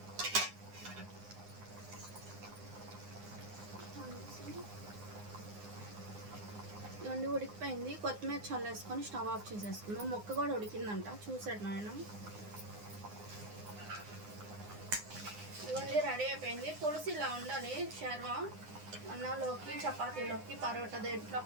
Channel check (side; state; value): left; late; 9.7 ms